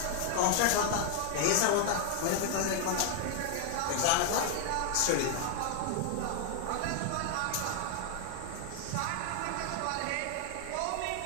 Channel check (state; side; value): different; both; correlation 0.00